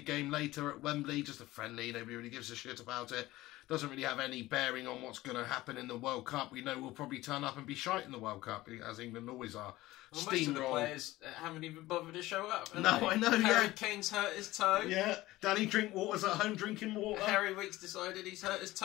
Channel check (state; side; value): quieter; right; 17.6 dB